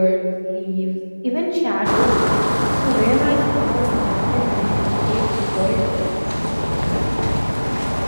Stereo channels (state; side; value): inverted; both; correlation -1.00